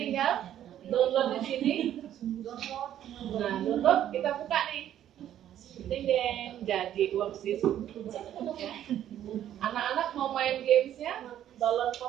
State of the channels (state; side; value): quieter; left; 11.2 dB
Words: download di sini. Tutup, kita buka nih. Ding ding, jadi worksheet. Ya. Anak-anak mau main gamesnya, balon